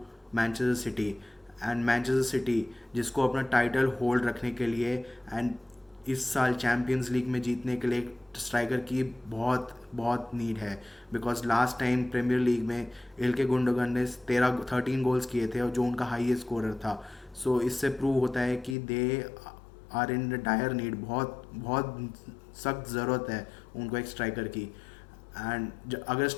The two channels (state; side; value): drops out; right; at 18.8 s